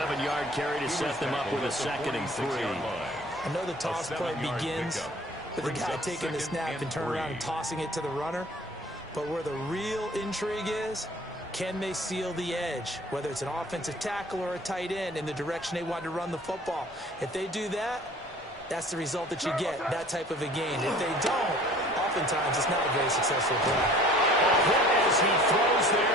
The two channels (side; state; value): left; noise; rumble, 25 dB below the sound